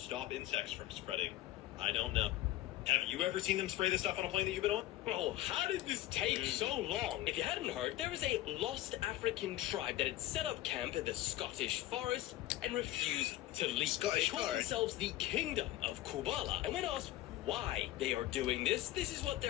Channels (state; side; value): quieter; right; 15.2 dB